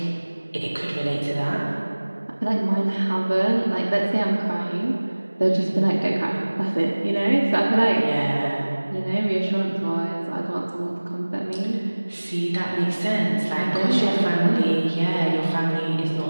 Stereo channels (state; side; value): inverted; both; correlation -1.00